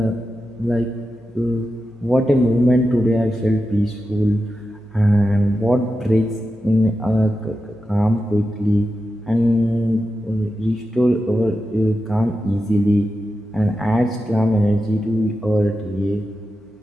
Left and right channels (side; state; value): both; normal; correlation 0.90